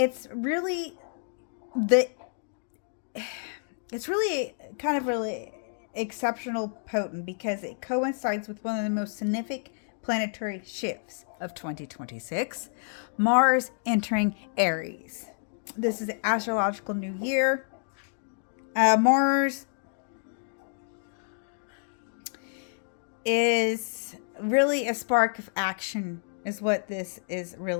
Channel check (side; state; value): right; silent; digital silence